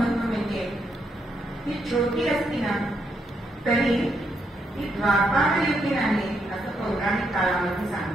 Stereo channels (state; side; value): normal; both; correlation 0.78